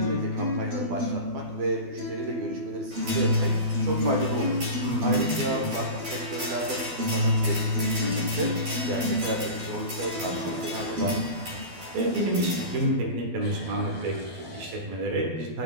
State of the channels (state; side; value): late; left; 12 ms